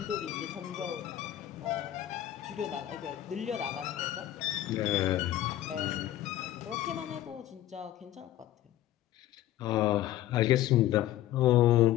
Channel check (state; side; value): quieter; right; 13.4 dB